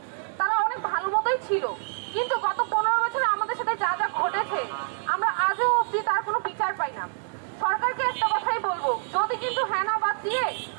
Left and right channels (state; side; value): silent; left; digital silence